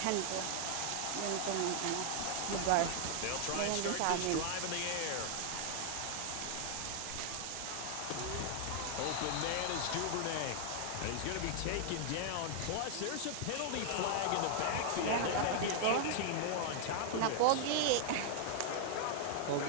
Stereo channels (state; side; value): different; both; correlation 0.00